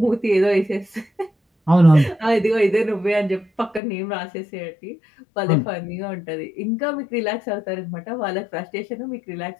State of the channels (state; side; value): drops out; right; at 3.8 s